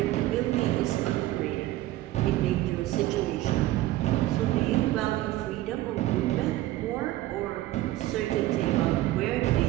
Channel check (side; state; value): left; quieter; 16.0 dB